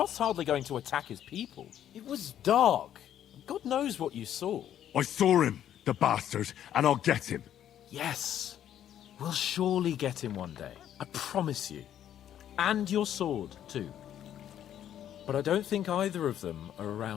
hardly going to attack his people. It was dark. God knows what you saw. I saw him, the bastard, and I'll get him. Yes. We'll surely get him one day. I promise you. And your sword, too. But I don't think either of them are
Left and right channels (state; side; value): quieter; right; 10.7 dB